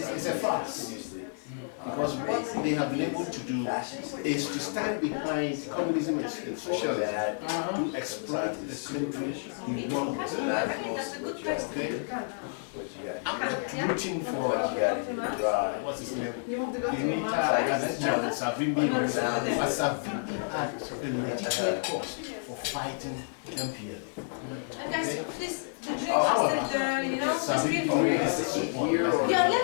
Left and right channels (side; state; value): right; silent; digital silence